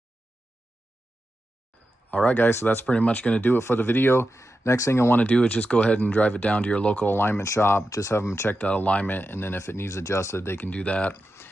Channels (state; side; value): normal; both; correlation 0.90